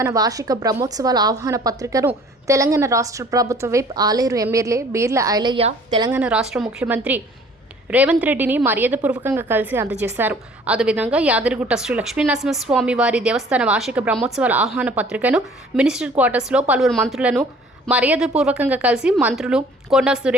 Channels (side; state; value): both; normal; correlation 0.53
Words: వార్షిక బ్రహ్మోత్సవాల ఆహ్వాన పత్రికను తెలంగాణ రాష్ట్ర ప్రభుత్వ విప్ ఆలేరు ఎమ్మెల్యే బీర్ల ఐలయ్య తెలంగాణ రాష్ట్ర ముఖ్యమంత్రి రేవంత్ రెడ్డిని మర్యాదపూర్వకంగా కలిసి అందజేశారు. అదేవిధంగా యాదగిరిగుట్ట శ్రీ లక్ష్మీ నరసింహస్వామి వారి దేవస్థాన వార్షిక బ్రహ్మోత్సవాల ఆహ్వాన పత్రికను మినిస్టర్ క్వార్టర్స్లో పలువురు మంత్రులను మర్యాదపూర్వకంగా కలిసి మంత్రులు కొండా